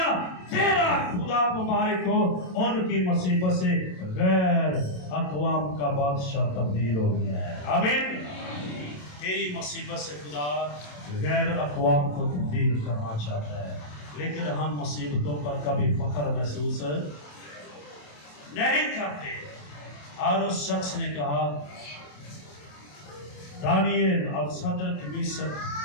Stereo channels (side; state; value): right; late; 27 ms